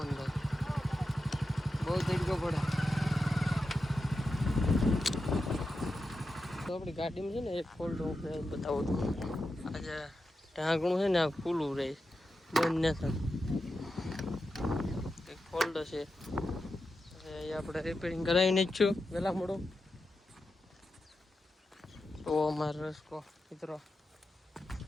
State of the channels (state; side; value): normal; both; correlation 0.89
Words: બહુ તડકો પડે. તો આપણી ગાડીમાં છે ને એક ફોલ્ટ હું બતાવું છું. આજે ઢાંકણું છે ને આ ખુલ્લું રહે બંધ ન થાય. એક ફોલ્ડ છે એ આપણે રિપેરિંગ કરાવીને જ છું વહેલા મોડો. તો અમારો રસ્કો મિત્રો